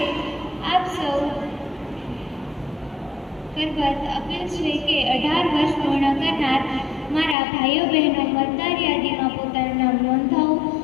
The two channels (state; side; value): drops out; right; at 7.4 s